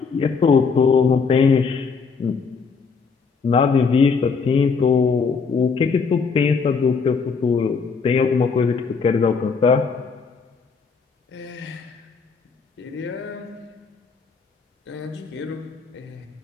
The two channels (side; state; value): right; quieter; 5.2 dB